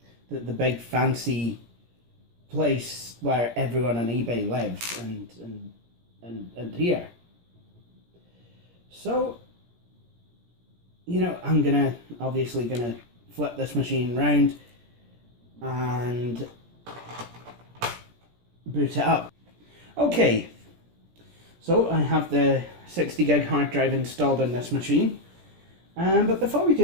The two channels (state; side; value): late; left; 17 ms